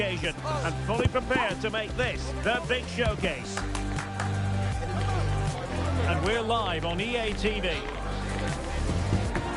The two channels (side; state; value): both; identical; correlation 1.00